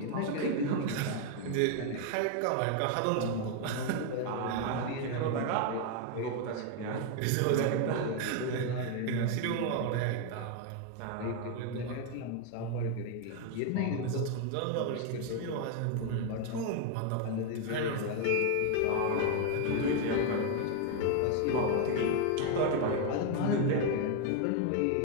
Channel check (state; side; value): different; both; correlation 0.01